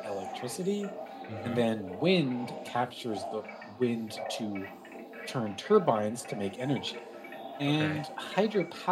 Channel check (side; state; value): both; identical; correlation 1.00